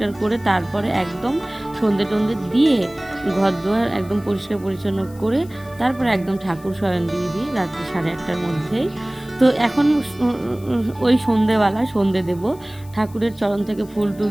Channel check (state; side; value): noise; left; hiss, 24 dB below the sound